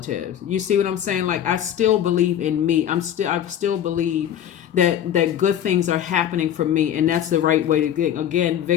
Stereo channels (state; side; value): quieter; right; 10.2 dB